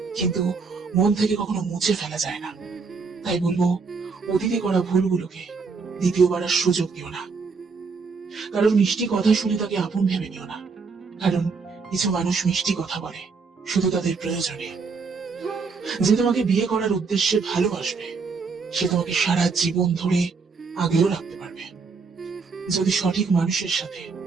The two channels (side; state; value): left; quieter; 4.8 dB